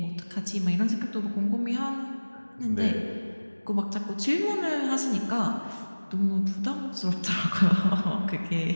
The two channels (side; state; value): both; inverted; correlation -1.00